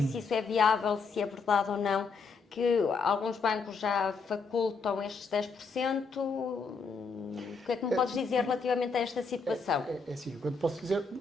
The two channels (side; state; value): right; quieter; 4.6 dB